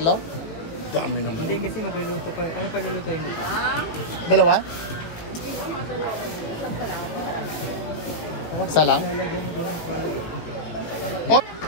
Dami naman. Hindi kasi magluluto pa. Ano pa lulutuin mo? Dalawa? Isa lang? Lalagyan mo doon ng palay. Oh!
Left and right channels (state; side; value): late; right; 18 ms